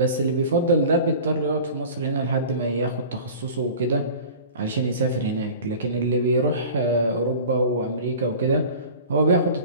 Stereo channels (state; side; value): inverted; both; correlation -0.40